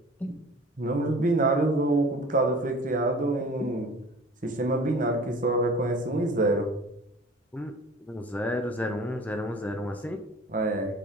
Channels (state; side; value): normal; both; correlation 0.44